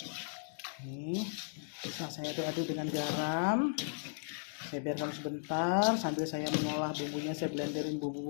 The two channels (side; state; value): right; silent; digital silence